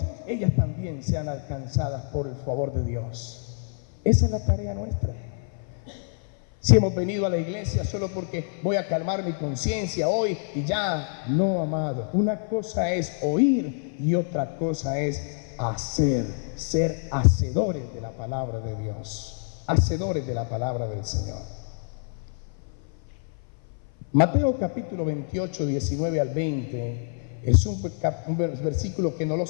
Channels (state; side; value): silent; right; 57 dB below the other